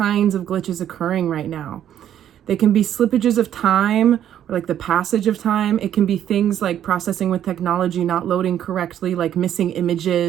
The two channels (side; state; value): left; quieter; 10.5 dB